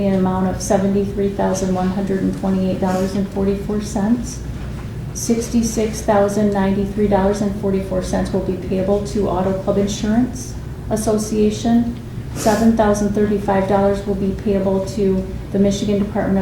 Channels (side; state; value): both; identical; correlation 1.00